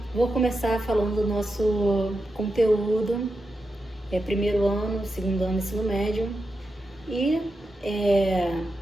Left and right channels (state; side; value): normal; both; correlation 0.88